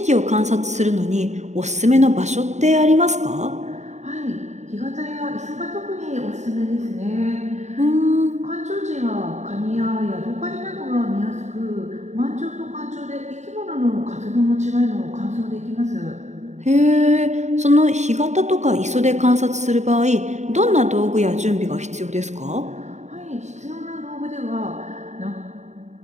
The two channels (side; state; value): left; late; 0.34 ms